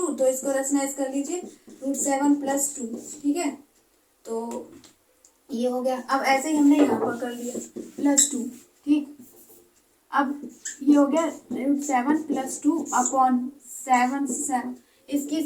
तो इसको रेशनलाइज कर लीजिए √7 प्लस 2। ठीक है, तो ये हो गया। अब ऐसे ही हमने यहाँ पर कर लिया प्लस 2। ठीक, अब ये हो गया √7 प्लस 2/7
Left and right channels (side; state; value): both; identical; correlation 1.00